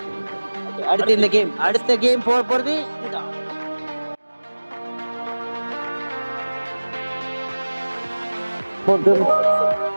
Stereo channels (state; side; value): inverted; both; correlation -1.00